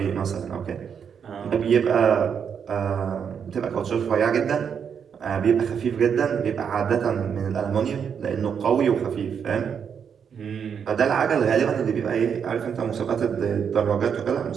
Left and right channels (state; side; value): quieter; left; 7.3 dB